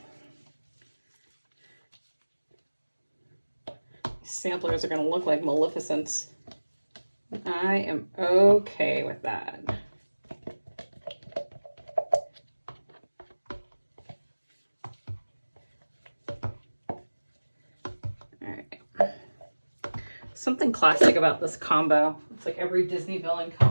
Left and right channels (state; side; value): inverted; both; correlation -1.00